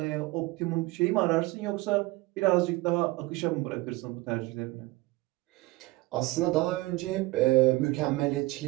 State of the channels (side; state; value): left; quieter; 21.2 dB